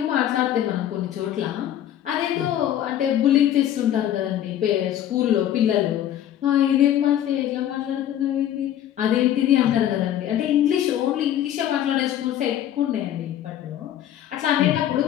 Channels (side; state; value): right; quieter; 11.3 dB